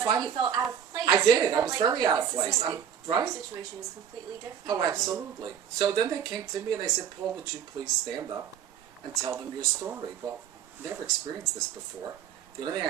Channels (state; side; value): quieter; left; 8.7 dB